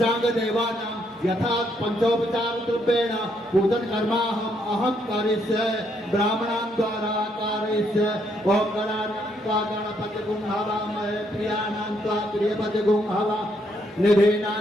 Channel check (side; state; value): both; normal; correlation 0.73